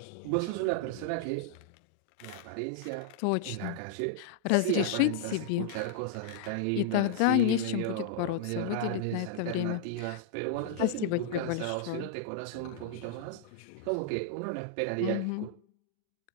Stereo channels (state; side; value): different; both; correlation -0.01